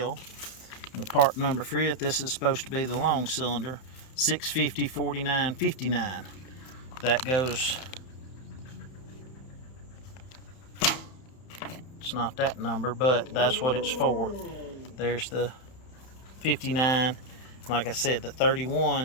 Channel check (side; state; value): right; late; 31 ms